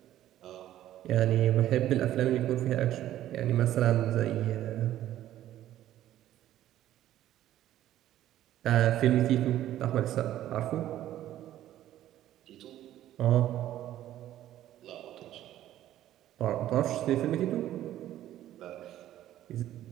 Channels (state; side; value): quieter; left; 12.9 dB